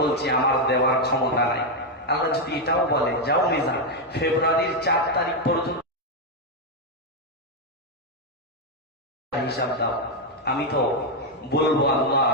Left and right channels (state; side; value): normal; both; correlation 0.03